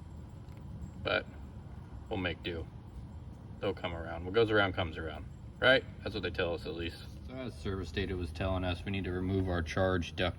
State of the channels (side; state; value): both; identical; correlation 1.00